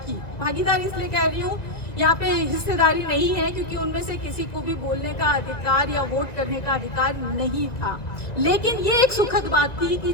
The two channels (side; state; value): right; late; 1.8 ms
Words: भागीदारी इसलिए कह रही हूँ, यहाँ पे हिस्सेदारी नहीं है क्योंकि उनमें से किसी को भी बोलने का अधिकार या वोट करने का अधिकार नहीं था। लेकिन ये एक सुखद बात थी कि